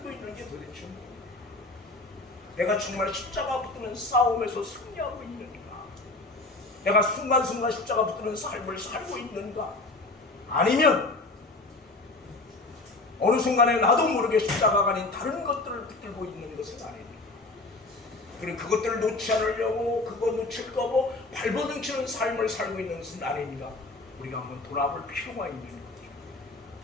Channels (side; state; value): right; quieter; 3.1 dB